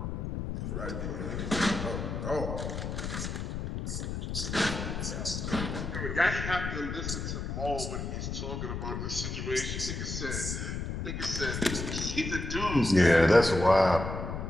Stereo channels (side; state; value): left; noise; rumble, 4 dB below the sound